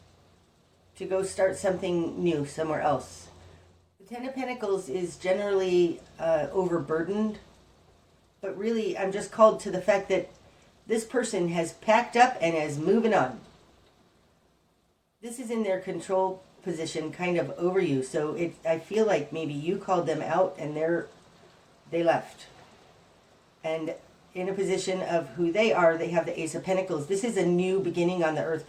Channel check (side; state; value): both; identical; correlation 1.00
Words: to go start something new somewhere else. The Ten of Pentacles is generally overburdened, but really I'm just called to the fact that this person has packed up and is moving on. This is in their control position, kind of over you, so I feel like maybe you called them out and they left. And in a position of who they are, they have the Ace of Pentacles. This is a new beginning on the earth